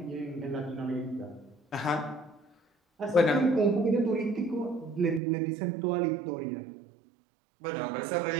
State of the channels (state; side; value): drops out; left; at 5.2 s